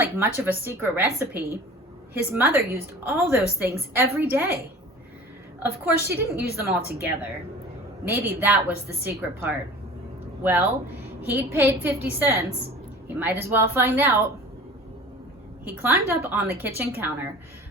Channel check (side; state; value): both; normal; correlation 0.41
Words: much of a secret recipe. His mother used all those things every day. Of course, she didn't use them all together. Maybe that was the secret part. Well, he'd paid 50 cents. He might as well find out. He climbed up on the kitchen counter